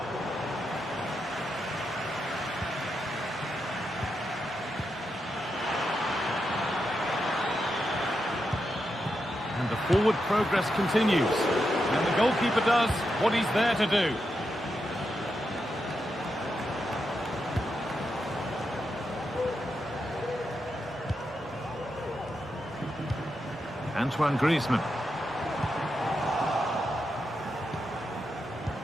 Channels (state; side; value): normal; both; correlation 0.85